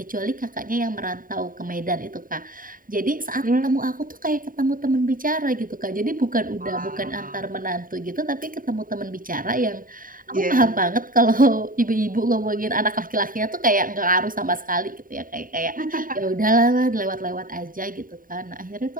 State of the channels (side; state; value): left; late; 0.40 ms